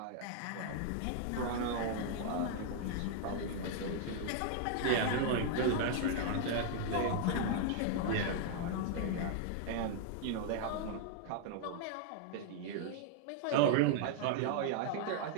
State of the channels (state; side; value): different; both; correlation -0.01